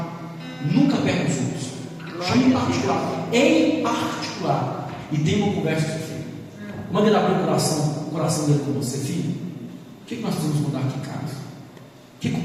Nunca perca os outros. Chama em particular. Em particular. E tenha uma conversa com o seu filho. Manda ele abrir o coração dele com você. Filho, o que nós precisamos mudar aqui em casa? O que o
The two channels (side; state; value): both; identical; correlation 1.00